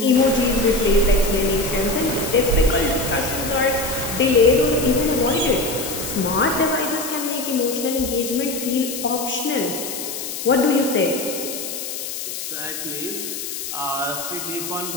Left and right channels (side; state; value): left; noise; hiss, 6 dB below the sound